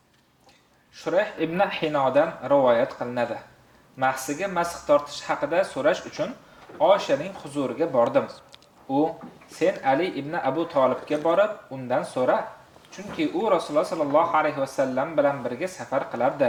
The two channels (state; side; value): identical; both; correlation 1.00